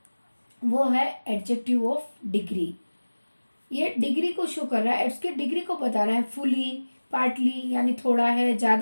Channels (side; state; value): both; inverted; correlation -1.00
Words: वो है एडजेक्टिव ऑफ डिग्री। ये डिग्री को शो कर रहा है, इसके डिग्री को बता रहा है। फुली, पार्टली यानी थोड़ा है,